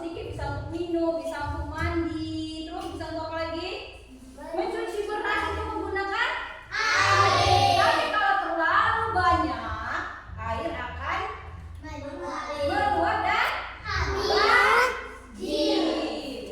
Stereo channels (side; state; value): both; identical; correlation 1.00